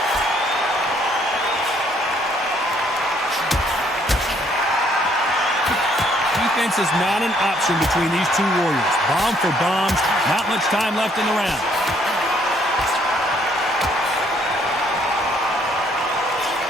Defense is not an option between these two warriors. Bomb for bombs. Not much time left in the round.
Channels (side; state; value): both; normal; correlation 0.66